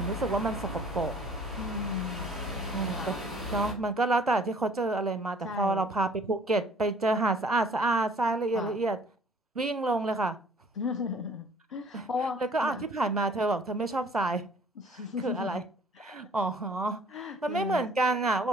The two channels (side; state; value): both; normal; correlation 0.55